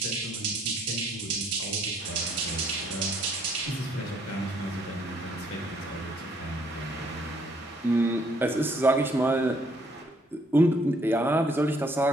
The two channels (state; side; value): normal; both; correlation 0.66